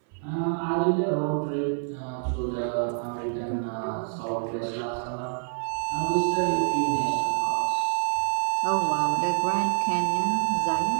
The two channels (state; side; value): silent; left; 60 dB below the other